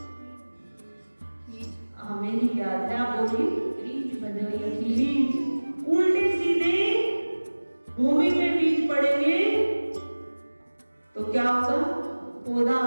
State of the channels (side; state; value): both; inverted; correlation -1.00